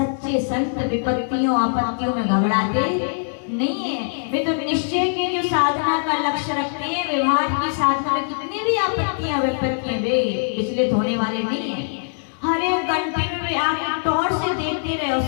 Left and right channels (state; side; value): silent; right; digital silence